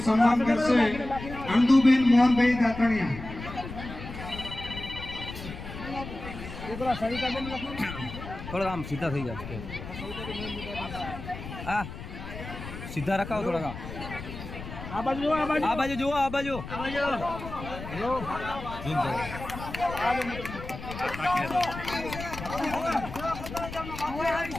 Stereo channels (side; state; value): left; noise; rumble, 10 dB below the sound